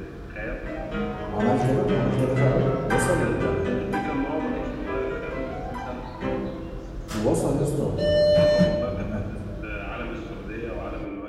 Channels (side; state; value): both; identical; correlation 1.00